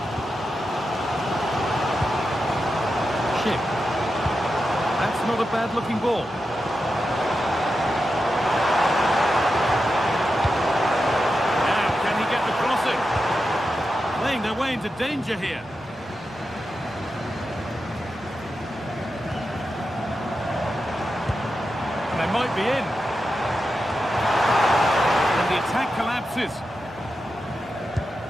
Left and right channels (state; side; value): normal; both; correlation 0.89